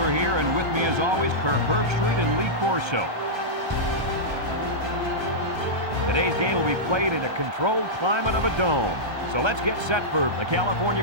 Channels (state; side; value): late; left; 1.3 ms